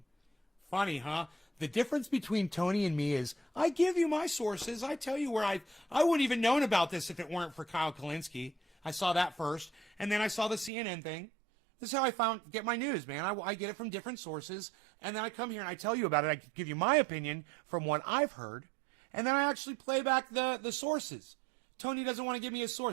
Funny, huh? The difference between Tony and me is I give you my sources. I tell you where I wouldn't even known about this if it weren't for Kyle Kalinske. I saw that first, and then I saw the CNN thing. This is how I get my news, man. I get it from different sources, and then I come here and I tell you about it. I give you my opinion from what I've heard, and then I actually play back the sources. Tony doesn't want to give me a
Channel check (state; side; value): drops out; left; at 10.7 s